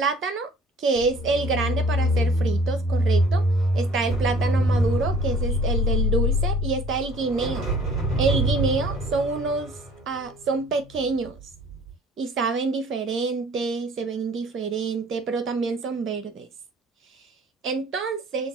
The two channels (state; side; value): normal; both; correlation 0.52